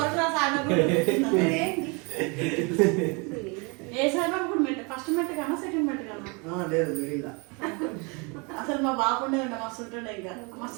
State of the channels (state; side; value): quieter; left; 31.1 dB